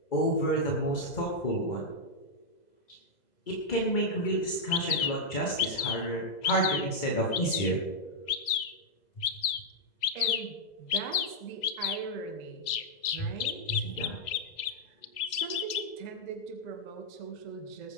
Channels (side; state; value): right; late; 2.0 ms